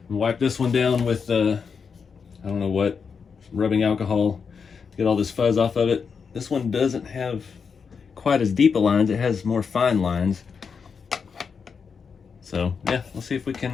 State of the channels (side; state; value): right; quieter; 5.9 dB